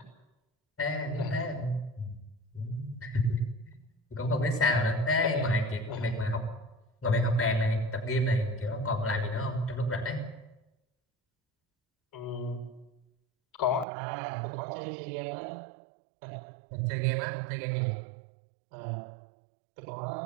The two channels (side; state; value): left; drops out; at 13.9 s